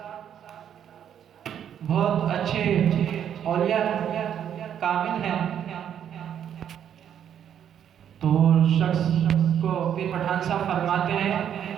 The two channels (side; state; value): left; quieter; 9.3 dB